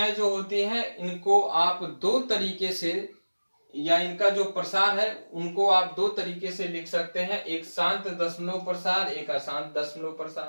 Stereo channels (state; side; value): inverted; both; correlation -1.00